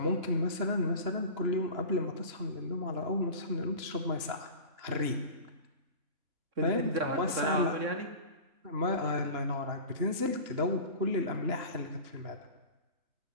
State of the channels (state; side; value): late; left; 3.0 ms